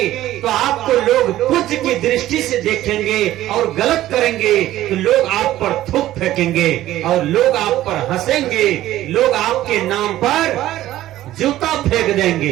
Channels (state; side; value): quieter; left; 14.4 dB